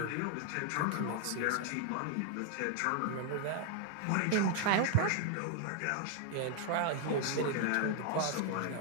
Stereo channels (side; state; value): both; different; correlation 0.00